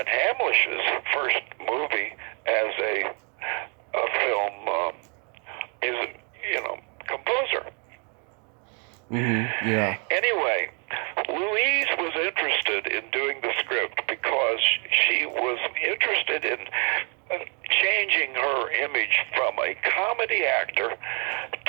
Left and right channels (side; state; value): left; quieter; 38.2 dB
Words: Hamlish's first movie as a film composer. Yeah. Anyway, Louise was interested in doing the script because she was interested in changing her image from a comedy actor